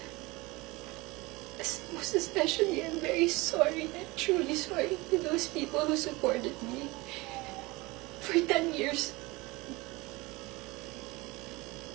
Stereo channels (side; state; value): left; quieter; 22.9 dB